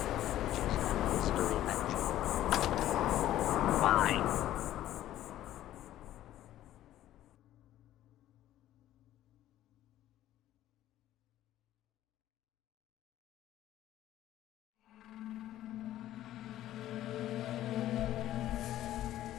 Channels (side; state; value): right; quieter; 13.3 dB